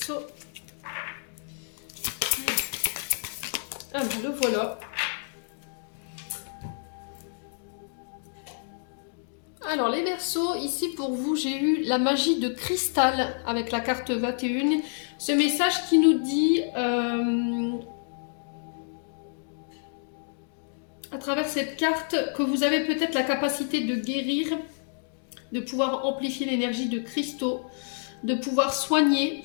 Ah, le voilà. Alors les Verseaux, ici pour vous, j'ai eu la magie de cristal avec la carte 21. Ce message qui nous dit, à travers cette carte, que vous avez peut-être la capacité de guérir, de pouvoir amplifier l'énergie de cristaux, de pouvoir soigner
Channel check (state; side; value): silent; right; digital silence